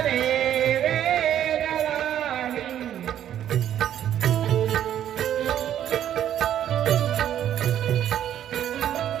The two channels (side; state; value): left; quieter; 10.7 dB